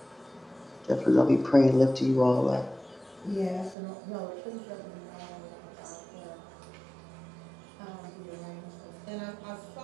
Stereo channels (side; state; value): left; drops out; at 3.8 s